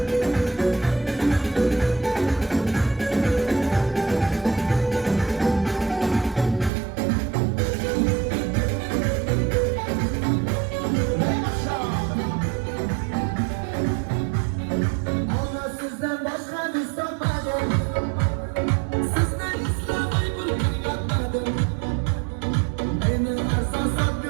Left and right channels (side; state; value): left; drops out; at 6.7 s